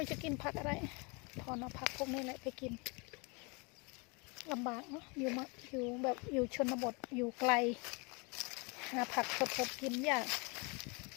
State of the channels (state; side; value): quieter; right; 30.5 dB